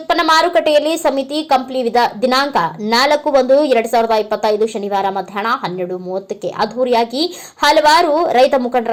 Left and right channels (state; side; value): identical; both; correlation 1.00